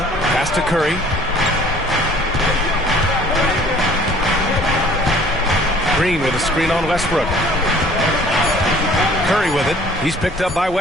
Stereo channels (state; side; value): normal; both; correlation 0.53